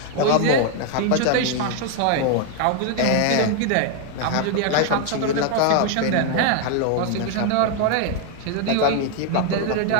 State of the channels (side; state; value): both; different; correlation 0.01